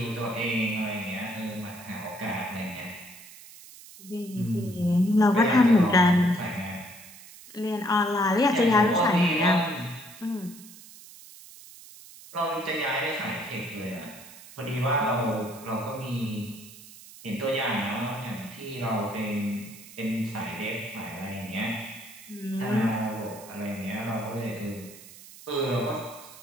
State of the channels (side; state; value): right; noise; hiss, 18 dB below the sound